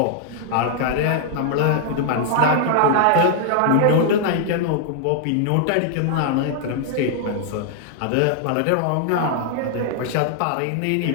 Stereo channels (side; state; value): both; different; correlation 0.00